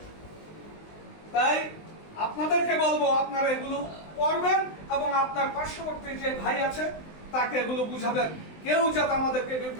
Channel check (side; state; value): right; late; 19 ms